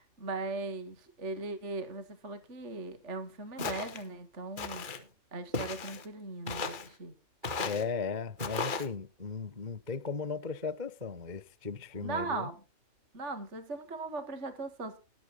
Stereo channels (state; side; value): late; left; 2.4 ms